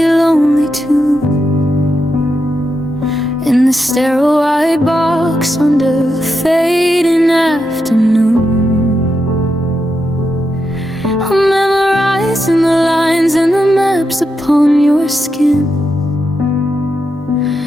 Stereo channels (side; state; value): both; normal; correlation 0.85